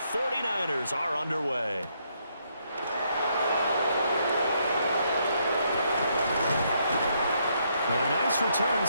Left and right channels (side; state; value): both; inverted; correlation -0.74